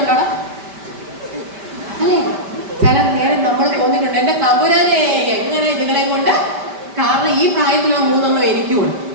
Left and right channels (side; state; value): left; late; 5.1 ms